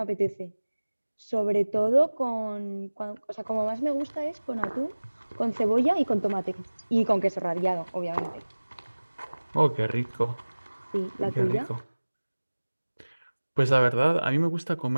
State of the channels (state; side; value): inverted; both; correlation -1.00